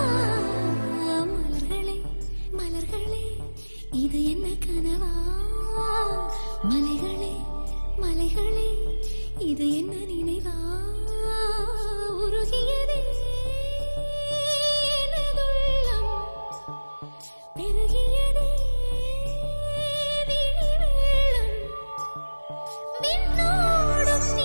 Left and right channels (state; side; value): inverted; both; correlation -1.00